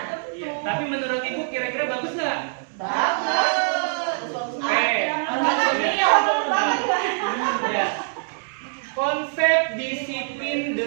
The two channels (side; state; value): left; silent; 63 dB below the other